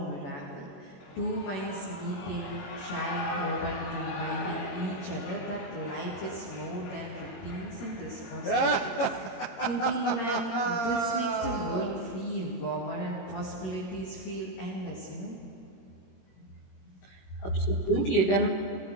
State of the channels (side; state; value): right; late; 22 ms